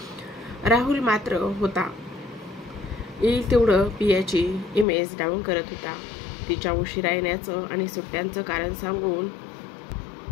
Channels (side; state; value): right; drops out; at 4.9 s